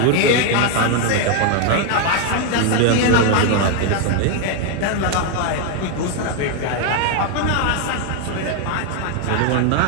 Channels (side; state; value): both; different; correlation 0.01